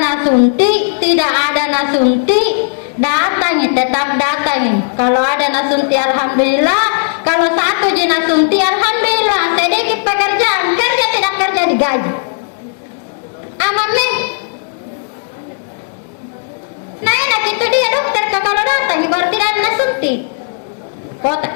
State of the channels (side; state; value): right; silent; digital silence